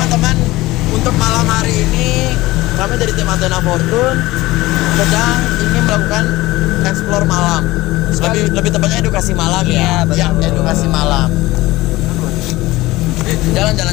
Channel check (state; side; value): quieter; right; 18.9 dB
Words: untuk malam hari ini kami dari tim Athena Fortune sedang ingin melakukan explore malam. Lebih tepatnya edukasi malam ya. Iya, betul. Ya, edukasi malam. Jalan.